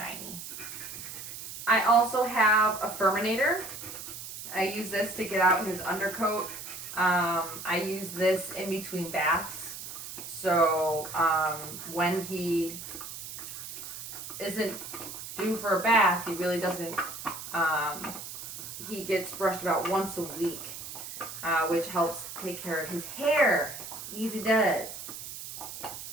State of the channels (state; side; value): noise; right; hiss, 10 dB below the sound